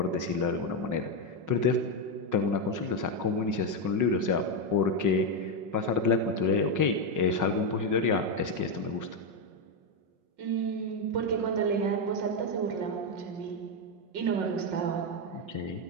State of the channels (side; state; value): left; late; 5.5 ms